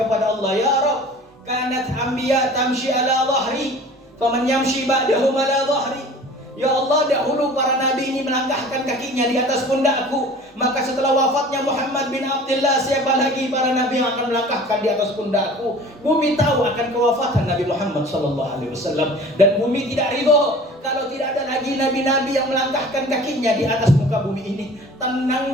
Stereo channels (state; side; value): normal; both; correlation 0.44